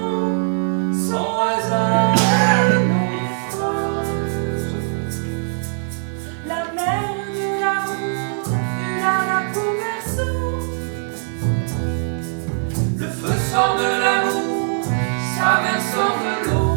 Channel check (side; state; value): left; silent; 65 dB below the other